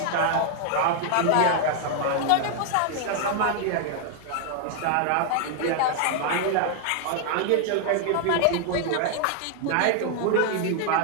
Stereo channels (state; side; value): different; both; correlation 0.00